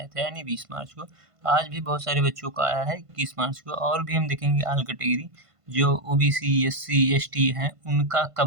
था, यानी 20 मार्च को। आज भी बहुत सारे बच्चों का आया है 21 मार्च को। और भी हम देखेंगे ऑल कैटेगरी जो ओबीसी एससी एसटी हैं उनका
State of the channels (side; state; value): left; late; 1.5 ms